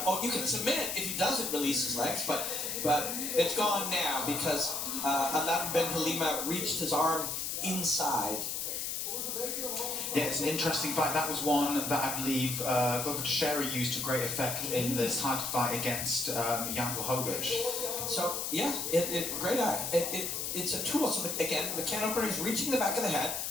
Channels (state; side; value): noise; left; hiss, 2 dB below the sound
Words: Oh, you can submit if he doesn't release his legs, but it's gone now because Aladin Ben Halima reached his arm inside. Yeah, it's an interesting fight. That was one that I believe Glover Teixeira used to great effect in this title fight against Jan Blachowicz. So yeah, great eye. It's a tool. So again, the can opener is reaching the back of the head,